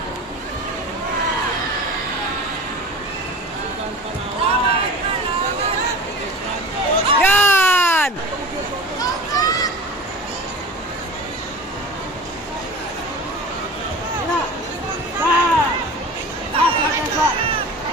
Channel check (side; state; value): both; normal; correlation 0.35